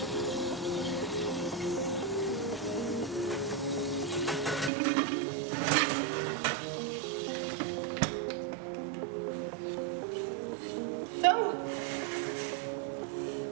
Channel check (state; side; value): drops out; left; at 4.7 s